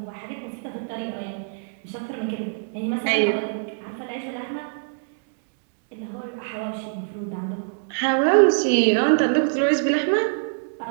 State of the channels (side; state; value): left; silent; digital silence